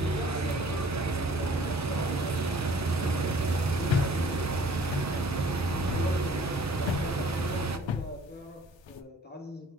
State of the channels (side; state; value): both; normal; correlation 0.54